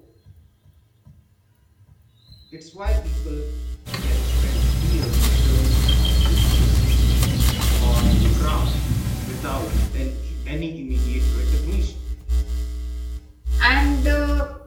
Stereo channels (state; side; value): identical; both; correlation 1.00